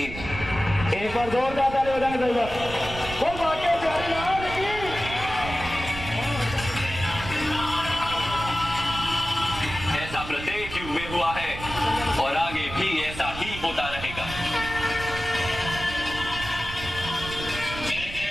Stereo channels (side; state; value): right; noise; rumble, 10 dB below the sound